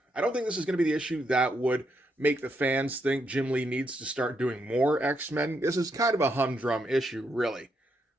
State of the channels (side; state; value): both; normal; correlation 0.79